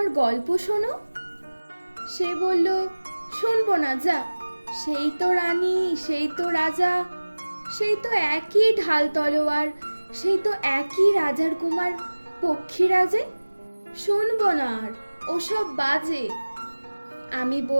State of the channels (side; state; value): both; inverted; correlation -1.00